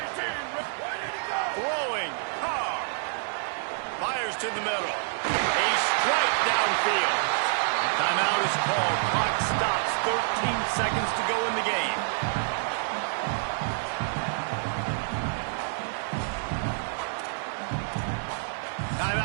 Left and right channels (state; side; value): silent; left; digital silence